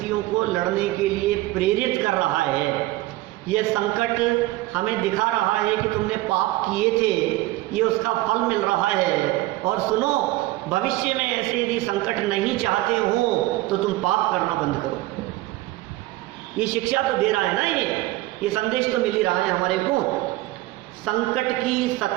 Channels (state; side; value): quieter; left; 18.2 dB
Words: को लड़ने के लिए प्रेरित कर रहा है। यह संकट हमें दिखा रहा है कि तुमने पाप किए थे, ये उसका फल मिल रहा है। और सुनो, भविष्य में ऐसे यदि संकट नहीं चाहते हो तो तुम पाप करना बंद करो। ये शिक्षा तो दे रहा है ना, ये संदेश तो मिल ही रहा है हमारे को। संकट की